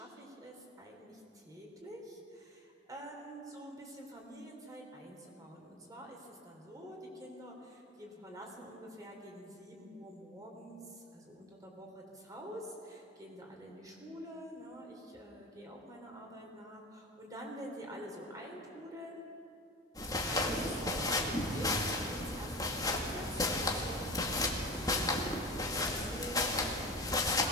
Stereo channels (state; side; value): normal; both; correlation 0.29